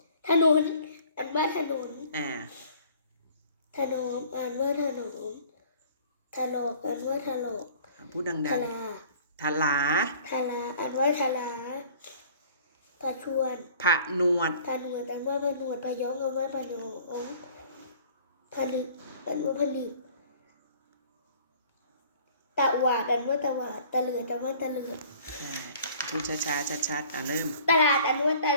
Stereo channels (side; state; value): both; inverted; correlation -0.51